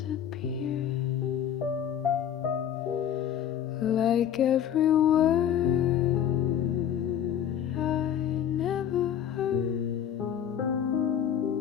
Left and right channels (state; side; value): quieter; right; 9.6 dB